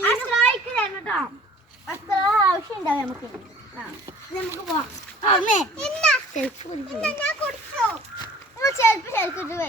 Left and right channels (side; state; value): both; normal; correlation 0.50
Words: ആവശ്യം ഉണ്ടാവും നമുക്ക്. നമുക്ക് പോവാം.